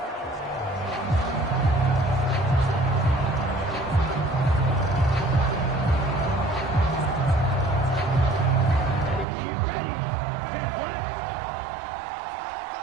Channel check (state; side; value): drops out; left; at 9.2 s